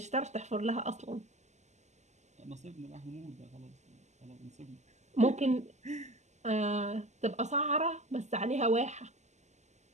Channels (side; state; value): left; late; 0.33 ms